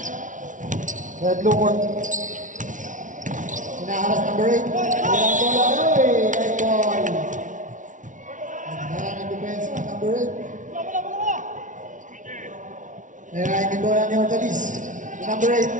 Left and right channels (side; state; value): left; late; 0.37 ms